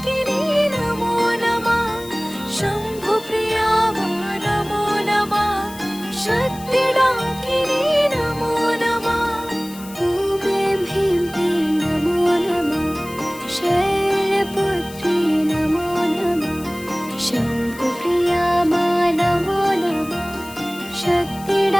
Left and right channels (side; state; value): left; noise; hiss, 18 dB below the sound